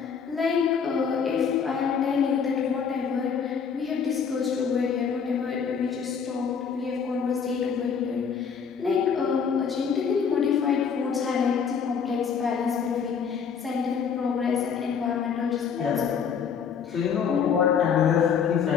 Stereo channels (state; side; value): quieter; right; 6.7 dB